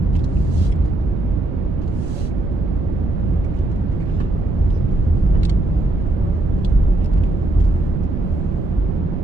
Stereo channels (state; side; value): noise; right; rumble, 4 dB below the sound